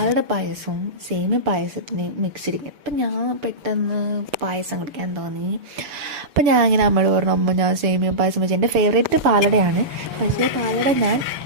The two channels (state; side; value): late; left; 6.9 ms